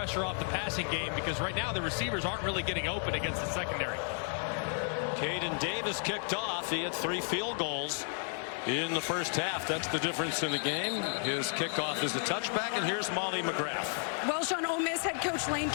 off the passing game, because right now the receivers aren't really getting open against the secondary. Caden Davis kicked off. He had 3 field goals in the first half. That's the difference in the game. His kickoff is a touchback, and here's Molly McGrath. Well, Sean, Ole Miss head coach Lane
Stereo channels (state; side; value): silent; right; 56 dB below the other